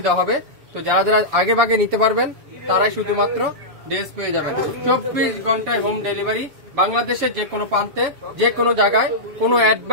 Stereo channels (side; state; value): left; late; 7.0 ms